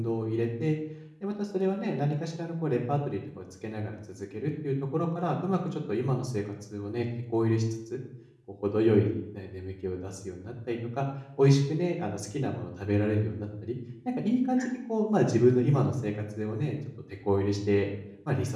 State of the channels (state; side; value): identical; both; correlation 1.00